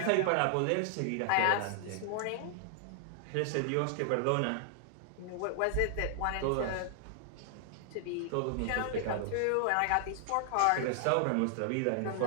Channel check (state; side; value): different; both; correlation 0.00